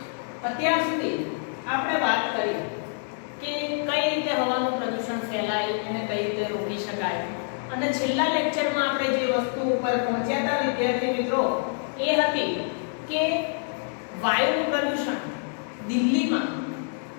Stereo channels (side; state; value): right; silent; 61 dB below the other